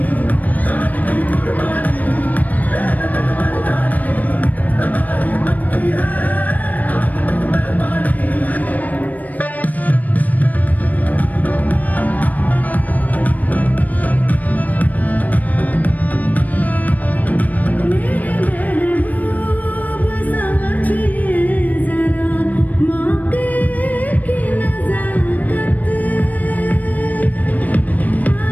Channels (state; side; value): late; right; 0.077 ms